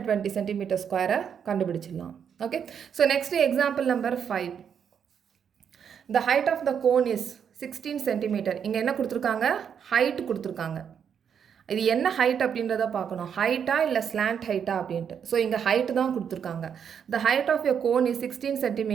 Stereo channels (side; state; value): left; quieter; 7.7 dB